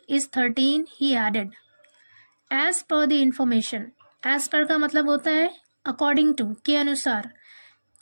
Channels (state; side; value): inverted; both; correlation -1.00